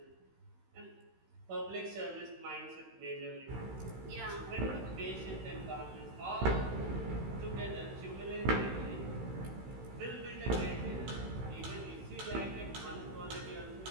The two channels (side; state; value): left; late; 16 ms